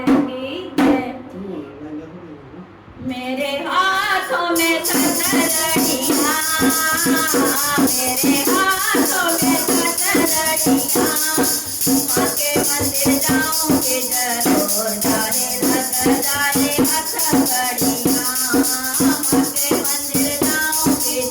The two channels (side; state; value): both; identical; correlation 1.00